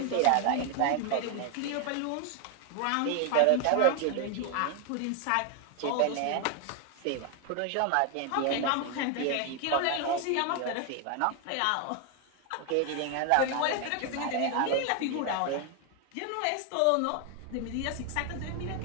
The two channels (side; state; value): both; different; correlation 0.01